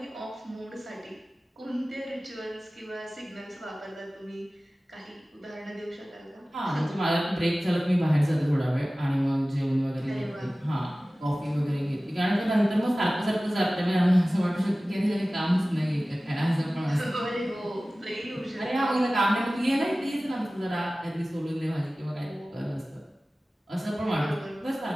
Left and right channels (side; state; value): both; normal; correlation 0.97